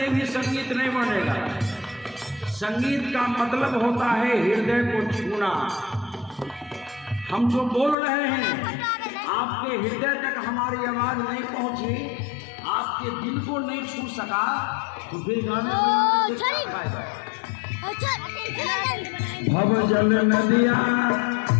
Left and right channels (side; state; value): right; drops out; at 8.0 s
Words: भी संगीत नहीं बनेगा। संगीत का मतलब होता है हृदय को छूना। हम जो बोल रहे हैं आपके हृदय तक हमारी आवाज नहीं पहुंची, आपके दिल को नहीं छू सका, तो फिर गाने में क्या फायदा? भव जल नदिया